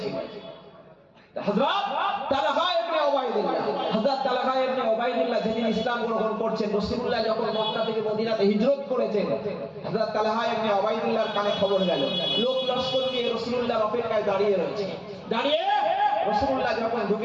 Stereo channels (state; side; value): identical; both; correlation 1.00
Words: ছিলেন। হযরত তালহা ইবনে উবাইদুল্লাহ যেদিন ইসলাম গ্রহণ করছেন, রাসূলুল্লাহ যখন মক্কা থেকে মদিনাতে হিজরত করেছেন, হযরত তালহা ইবনে উবাইদুল্লাহর কানে খবর গেল। লোক লস্কর নিয়ে রাসূলুল্লাহর অপেক্ষায় দাঁড়িয়ে রয়েছে। দাঁড়িয়ে রাসূলুল্লাহ যখন